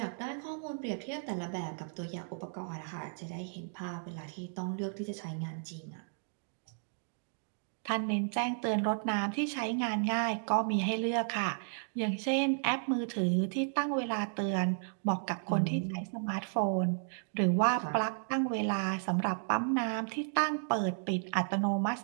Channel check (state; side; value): silent; left; digital silence